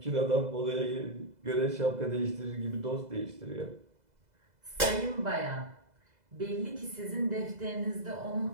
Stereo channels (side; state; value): left; late; 2.0 ms